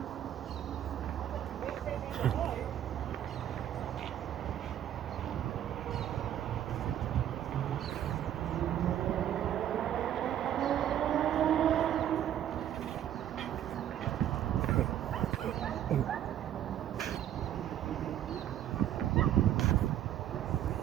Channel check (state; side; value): quieter; left; 11.1 dB